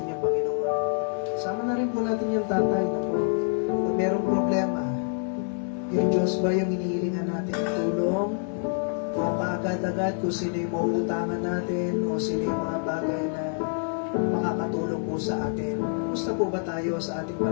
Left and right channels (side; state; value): right; silent; 60 dB below the other